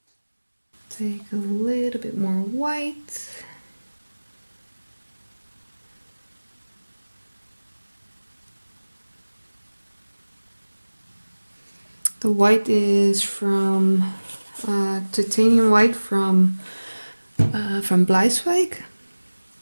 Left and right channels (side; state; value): both; inverted; correlation -1.00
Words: Take a little bit more white. The white is from titanium white from Bleiswijk.